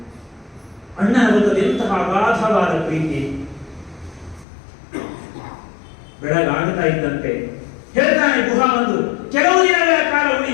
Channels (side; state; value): right; drops out; at 4.5 s